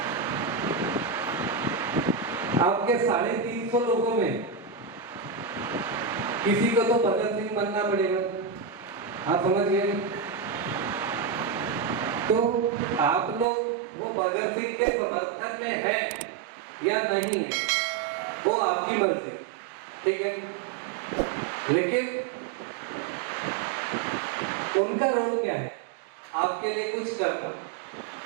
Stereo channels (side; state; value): left; drops out; at 13.5 s